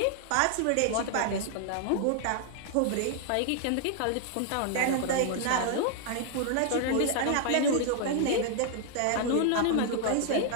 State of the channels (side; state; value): both; different; correlation 0.00